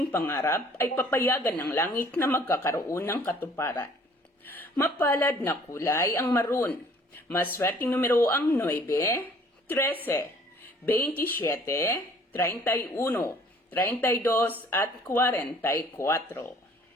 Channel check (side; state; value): both; normal; correlation 0.56